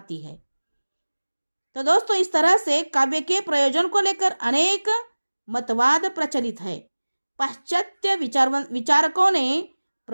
है। तो दोस्तों, इस तरह से काव्य के प्रयोजन को लेकर अनेक मतवाद प्रचलित है। पाश्चात्य विचारकों ने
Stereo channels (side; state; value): both; inverted; correlation -1.00